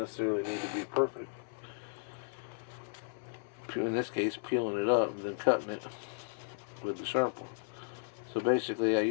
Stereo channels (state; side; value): silent; right; 55 dB below the other